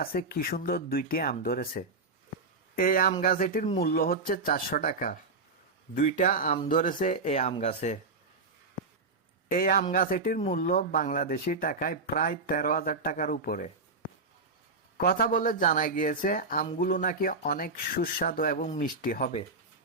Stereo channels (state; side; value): quieter; left; 3.6 dB